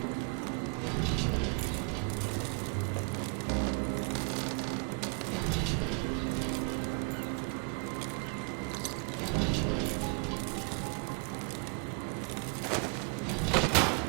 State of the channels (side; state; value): left; quieter; 33.5 dB